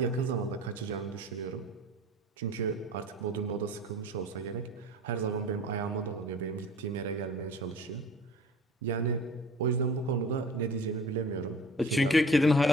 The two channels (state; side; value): normal; both; correlation 0.43